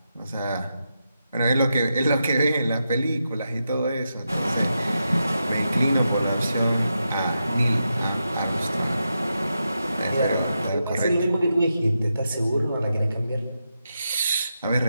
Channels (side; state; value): both; inverted; correlation -0.87